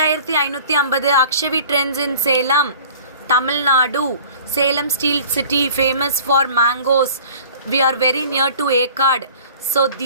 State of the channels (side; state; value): both; inverted; correlation -0.47